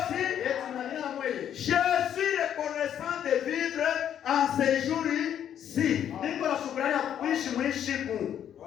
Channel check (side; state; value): right; quieter; 9.7 dB